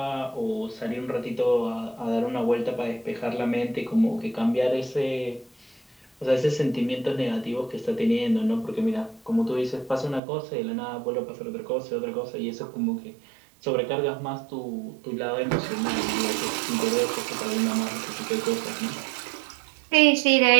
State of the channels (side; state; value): left; drops out; at 10.2 s